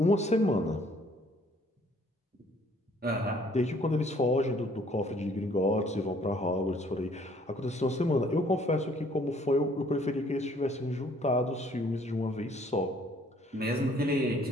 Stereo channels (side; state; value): both; normal; correlation 0.61